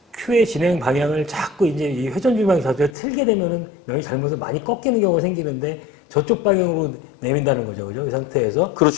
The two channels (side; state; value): right; drops out; at 3.0 s